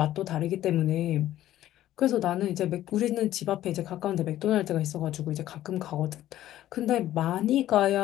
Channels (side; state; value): right; quieter; 13.4 dB